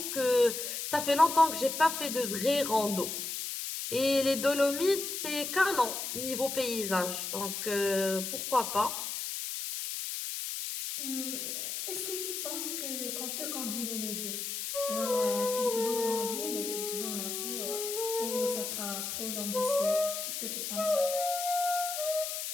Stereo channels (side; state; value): left; noise; hiss, 4 dB below the sound